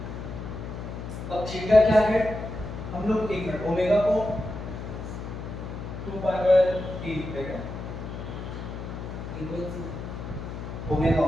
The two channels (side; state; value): left; noise; hum, 8 dB below the sound